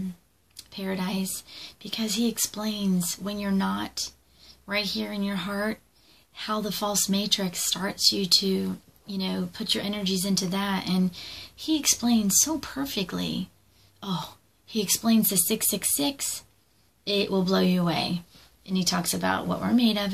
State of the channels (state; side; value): identical; both; correlation 1.00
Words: Paradise, because he explains when you're not right here in your heart, how the false matrix starts you to, put your energies into that. And he explains so perfectly. Oh, he explains the 666. It will blow you away. And he talks about what we're made of